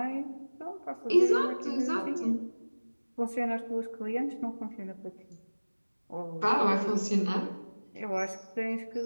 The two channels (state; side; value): inverted; both; correlation -1.00